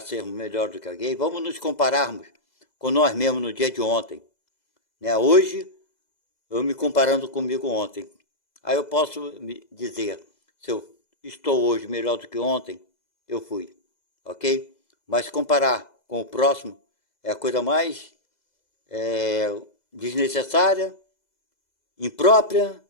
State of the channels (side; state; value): right; late; 2.0 ms